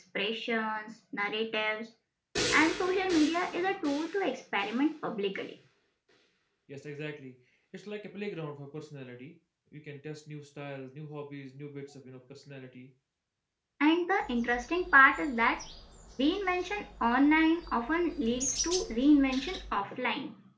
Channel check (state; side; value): identical; both; correlation 1.00